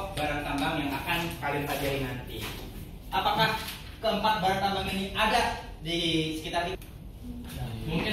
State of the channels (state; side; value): identical; both; correlation 1.00